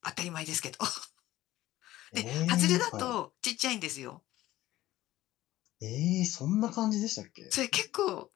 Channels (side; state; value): right; quieter; 15.6 dB